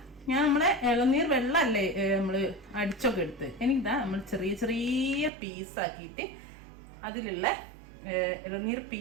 ഞാൻ നമ്മളെ ഇളനീർ വെള്ളമല്ലേ നമ്മൾ അടിച്ചൊക്കെ എടുത്ത് നമ്മൾ ചെറിയ ചെറിയ പീസാക്കിയിട്ട് അതിലുള്ള ഇളനീർ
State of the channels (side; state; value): left; drops out; at 5.3 s